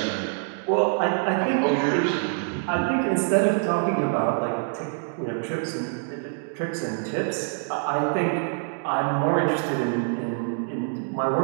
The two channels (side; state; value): left; silent; digital silence